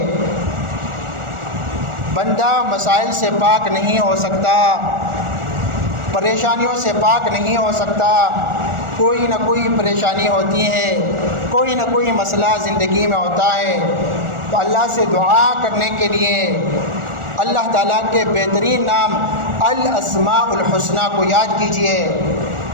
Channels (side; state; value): left; late; 1.4 ms